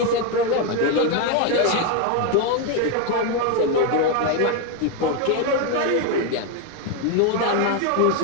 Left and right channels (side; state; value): both; different; correlation 0.02